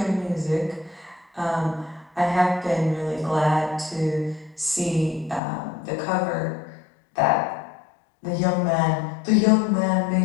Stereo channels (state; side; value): drops out; right; at 5.4 s